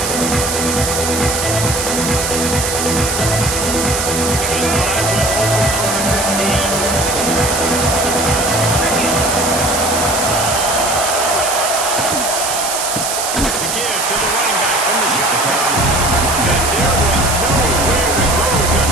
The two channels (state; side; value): noise; right; hiss, 2 dB below the sound